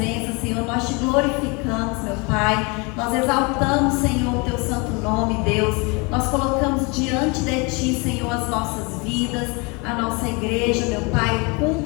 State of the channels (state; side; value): quieter; right; 29.4 dB